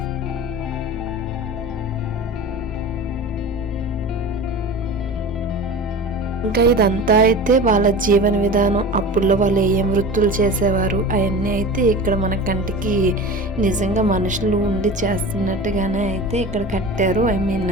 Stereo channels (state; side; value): normal; both; correlation 0.34